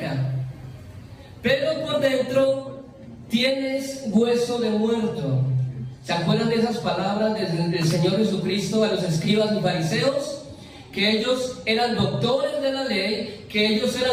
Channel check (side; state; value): both; identical; correlation 1.00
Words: Pero por dentro tienes hueso de muerto. ¿Se acuerdan de esas palabras del Señor Jesucristo a los escribas y fariseos? Que ellos eran doctores de la ley, que ellos